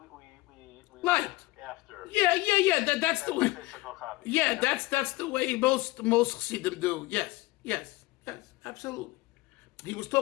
Light. after. Yeah. That's the way. Physical copy. Yeah, that's the way most Chassidim do. Yes, absolutely. He was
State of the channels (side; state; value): right; quieter; 20.5 dB